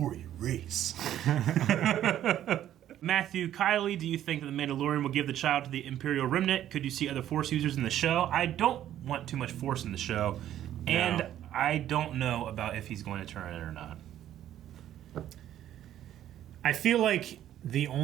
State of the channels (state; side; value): quieter; left; 11.7 dB